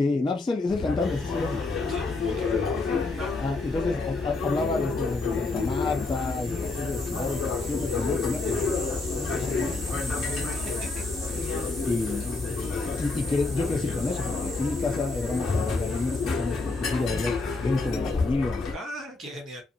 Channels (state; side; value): quieter; right; 3.4 dB